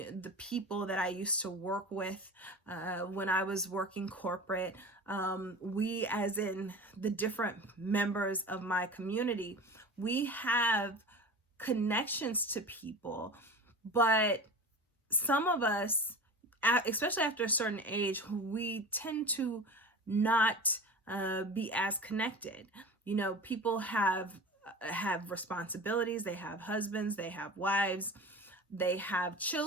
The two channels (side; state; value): both; normal; correlation 0.34